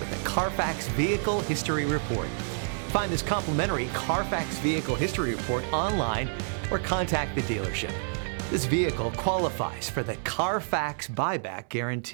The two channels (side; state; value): left; silent; 59 dB below the other